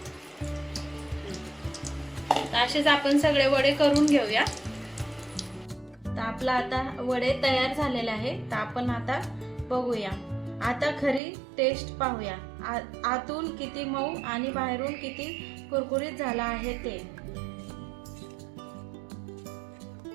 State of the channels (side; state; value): left; drops out; at 11.2 s